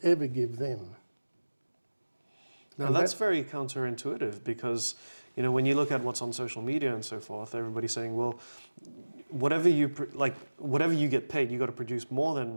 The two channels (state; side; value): inverted; both; correlation -1.00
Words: ever give them. Now that's very counterintuitive because, when you look at what's on social media and so forth, everybody's saying, well, whatever you get paid, you got to produce more